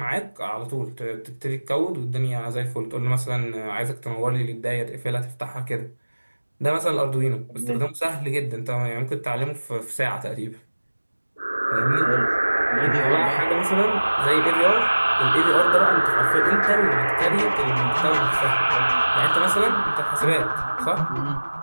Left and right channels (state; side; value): inverted; both; correlation -1.00